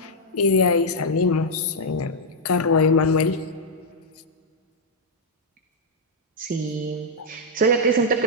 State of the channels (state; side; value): normal; both; correlation -0.04